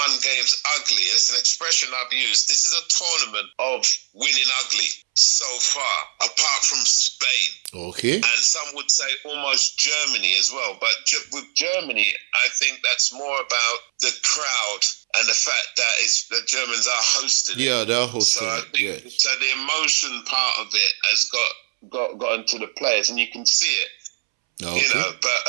games ugly. It's an expression I've used. This is a tournament of winning ugly so far, apart from Spain. Okay. And some would say almost Germany as well. But with Germany, I think that's more about the crowd and the fact that the Germans are hosting it. Yeah, they're hosting it. So the emotion part of it has got into the players, and you can see it. Okay. But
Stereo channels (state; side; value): silent; left; 65 dB below the other